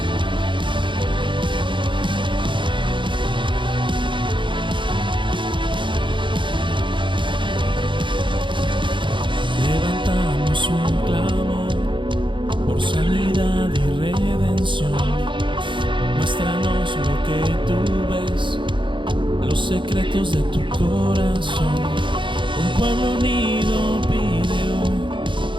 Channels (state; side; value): late; left; 0.23 ms